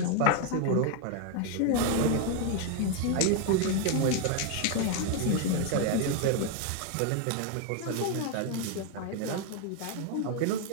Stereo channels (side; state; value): both; different; correlation 0.01